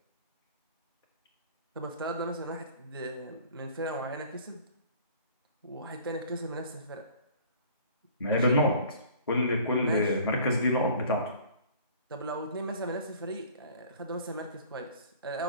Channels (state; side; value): inverted; both; correlation -0.50